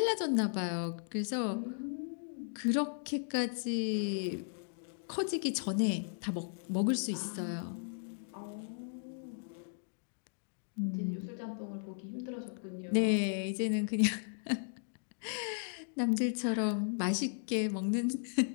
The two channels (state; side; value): silent; right; digital silence